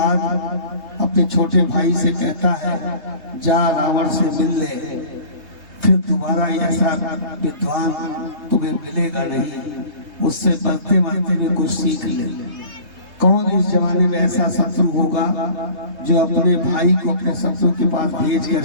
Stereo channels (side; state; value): left; late; 3.3 ms